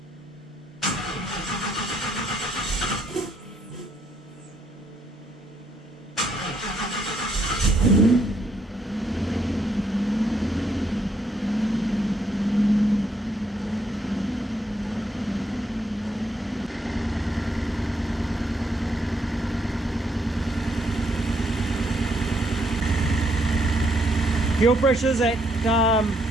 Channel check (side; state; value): both; normal; correlation 0.72